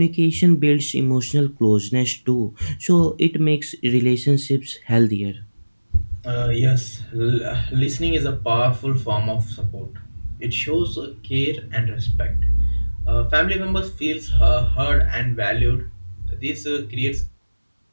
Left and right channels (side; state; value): both; inverted; correlation -1.00